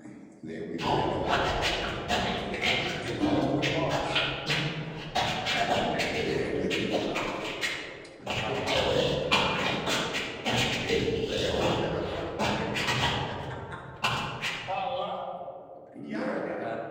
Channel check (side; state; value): both; identical; correlation 1.00